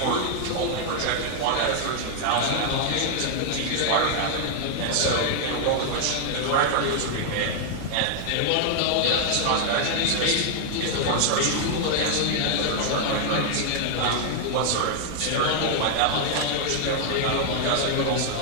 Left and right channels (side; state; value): both; different; correlation 0.00